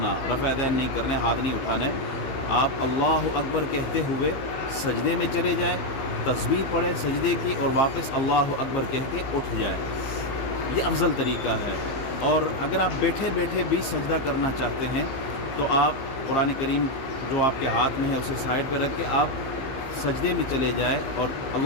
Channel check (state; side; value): late; right; 15 ms